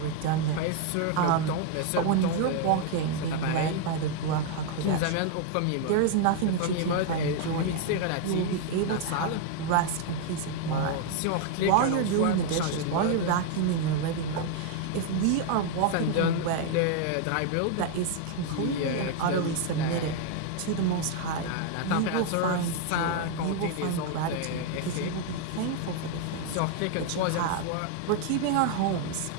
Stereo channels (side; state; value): both; different; correlation 0.00